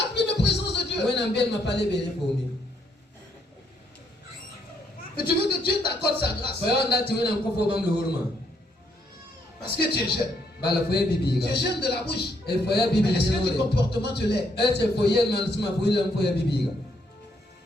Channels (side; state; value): both; normal; correlation 0.73